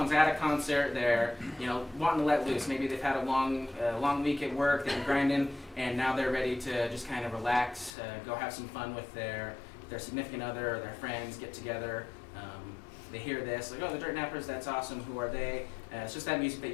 at a concert, they're wanting to let loose. Maybe they've had a long week at work, they've been grinding, and now they're ready to just kind of relax, go have some fun with their significant other or their friends, get together. They hear this, like, oh, the Dirt Nappers, that's awesome. Who are they? It's just that music that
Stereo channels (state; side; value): drops out; right; at 7.9 s